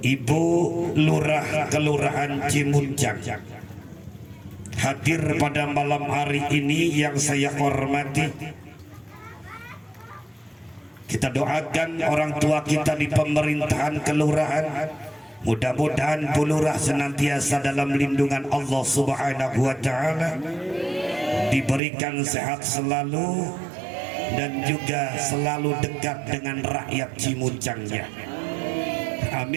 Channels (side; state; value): left; drops out; at 21.8 s